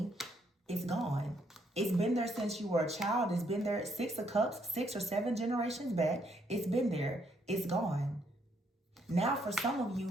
is gone. It's been there since you were a child. It's been there. 6 of Cups, 6 or 7 generations back. It's been there. It's gone. Now for some of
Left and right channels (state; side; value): normal; both; correlation 0.72